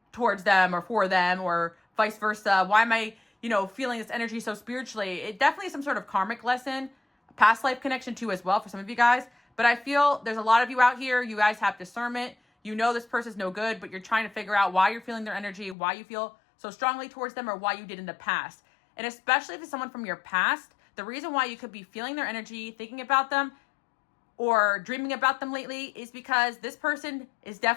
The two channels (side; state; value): right; drops out; at 15.8 s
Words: towards them or for them, or vice versa? Why am I, feeling this energy so spiritually? It definitely is some sort of karmic lesson, past life connection too as well for some of you guys. But I feel there's a lot of you out here, you guys have discernment. You know this person's no good, but you're trying to figure out why you're feeling their energy, why you feel so strongly towards them, or why you did in the past. And especially if it's someone from your past, the reason why you could be feeling their energy, thinking about them, or dreaming about them lately is because this person is